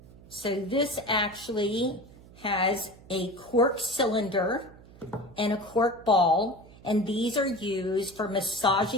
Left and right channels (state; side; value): noise; right; hum, 22 dB below the sound